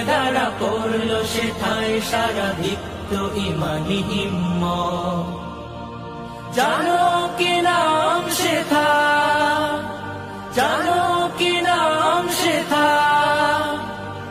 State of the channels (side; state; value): both; identical; correlation 1.00